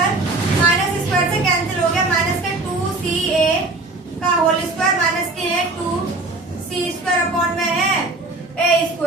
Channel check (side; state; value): left; quieter; 3.1 dB